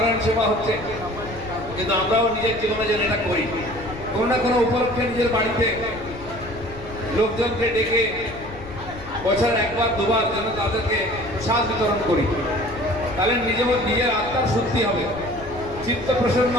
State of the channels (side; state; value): left; noise; rumble, 15 dB below the sound